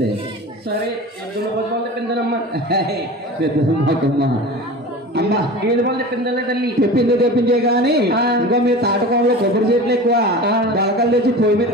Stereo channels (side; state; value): both; normal; correlation 0.34